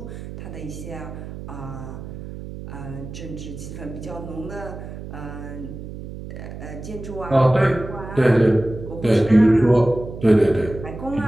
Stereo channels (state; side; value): noise; right; hum, 11 dB below the sound